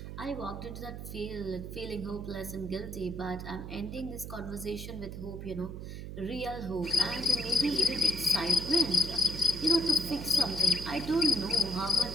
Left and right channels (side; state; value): right; noise; hum, 9 dB below the sound